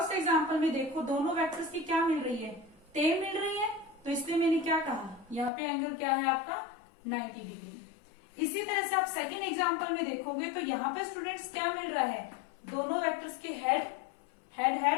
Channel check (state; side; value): drops out; right; at 5.5 s